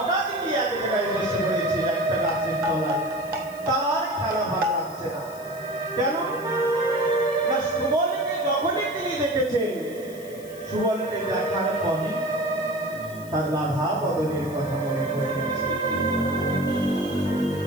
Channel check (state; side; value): noise; left; hiss, 20 dB below the sound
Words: গিয়ে এক জায়গায় বসে পড়েছে একটা গাছের তলায়। তার খেলা ভালো লাগছে না। কেন না, সুবলকে যখনই তিনি দেখেছেন, সুবলকে দেখার পরে তার রাধা বদনের কথা মনে পড়ে গেছে।